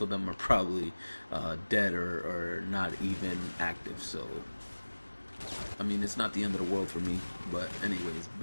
of them are probably dead or not even active. So I mean, it's not the end of the world for me. But anyways,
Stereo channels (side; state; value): both; inverted; correlation -1.00